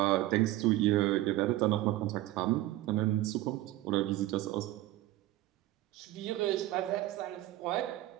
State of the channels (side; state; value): left; quieter; 16.0 dB